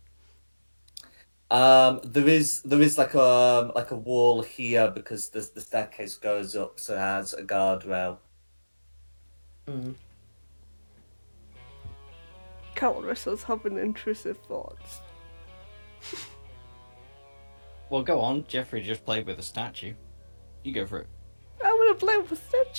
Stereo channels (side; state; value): both; inverted; correlation -1.00